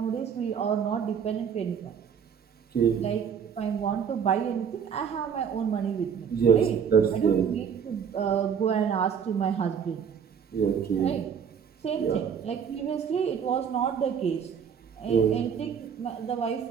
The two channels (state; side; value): quieter; left; 7.4 dB